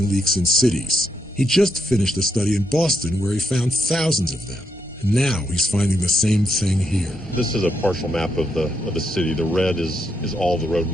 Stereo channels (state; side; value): normal; both; correlation 0.79